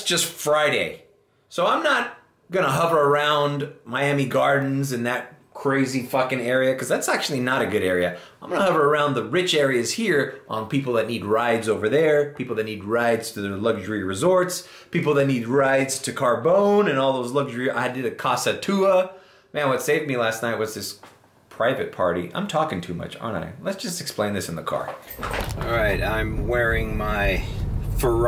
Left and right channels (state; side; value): identical; both; correlation 1.00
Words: just Friday. So I'm not gonna hover around Miami Gardens and that crazy fucking area, because that's actually not a good area. I'm gonna hover around the rich areas here on people that need rides over there, people that need rides to their luxury resorts, people that need rides to Carbone and all those luxury. I did a Casa Tua. Man, what saved me last night was this private party. I'm talking too much, aren't I? Let's just explain this in the car. All right, I'm wearing my